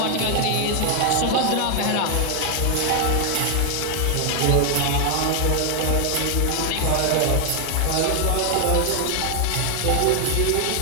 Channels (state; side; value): different; both; correlation 0.00